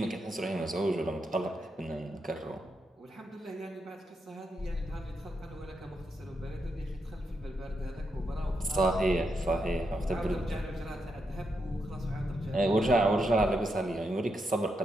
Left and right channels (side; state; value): both; normal; correlation 0.83